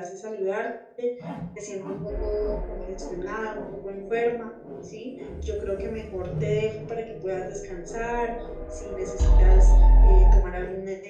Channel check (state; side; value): identical; both; correlation 1.00